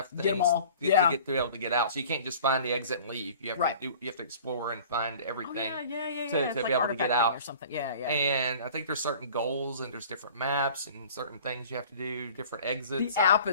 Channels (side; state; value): both; inverted; correlation -0.46